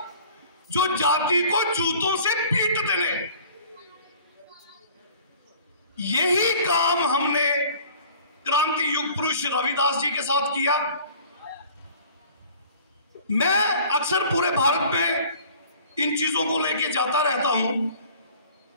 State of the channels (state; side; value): inverted; both; correlation -0.49